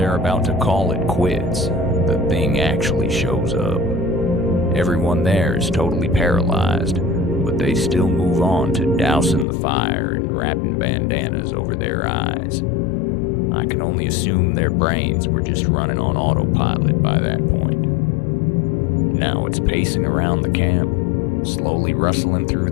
about to call it quits, the thing actually shows up. Everyone there is totally paralyzed, but they still move on to dousing the fire and wrapping bandanas over their eyes. I can only assume their brains were just running on autopilot by that point. Now it's pacing around the camp, slowly rustling through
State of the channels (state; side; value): drops out; right; at 9.5 s